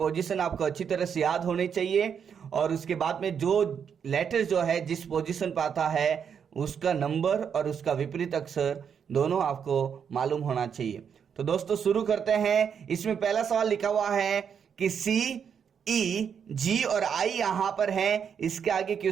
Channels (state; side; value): quieter; left; 7.4 dB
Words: आपको अच्छी तरह से याद होनी चाहिए और उसके बाद में जो लेटर जो है जिस पोजीशन पर आता है उसका नंबर और उसका विपरीत अक्षर दोनों आपको मालूम होना चाहिए। तो दोस्तों शुरू करते हैं। इसमें पहला सवाल लिखा हुआ है कि सी, ई, जी और आई यहां पर है, इसके आगे